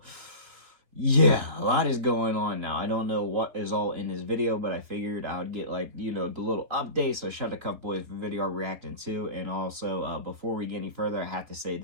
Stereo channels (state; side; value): late; left; 3.6 ms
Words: yeah, a lot is going on now. I don't know what is all in this video, but I figured I would get, the little update. So shout out to Cup Boys for video reacting to. And also, before we get any further, I have to say